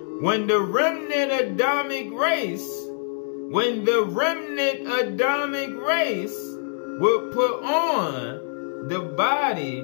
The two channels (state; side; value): silent; right; digital silence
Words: When the remnant Adamic race would put on the body